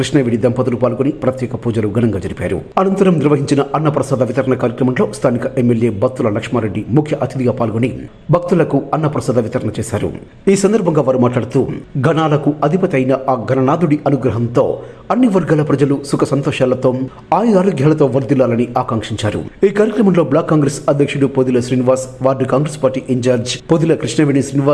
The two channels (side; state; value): both; identical; correlation 1.00